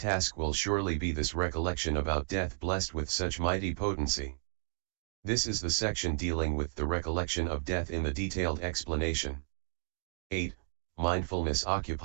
will surely be this recollection about death blessed with such mighty potency. This is the section dealing with the recollection of death in the detailed explanation. 8. Mindfulness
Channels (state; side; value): silent; left; digital silence